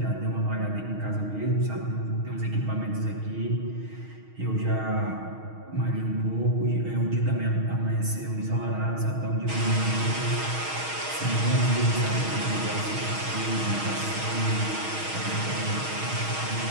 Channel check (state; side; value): late; left; 6.4 ms